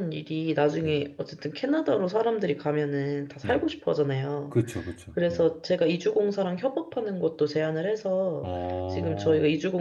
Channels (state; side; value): identical; both; correlation 1.00